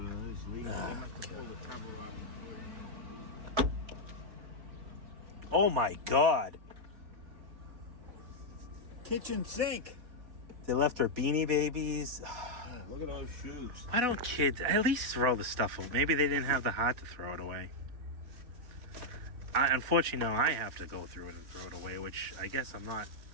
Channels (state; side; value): late; left; 4.0 ms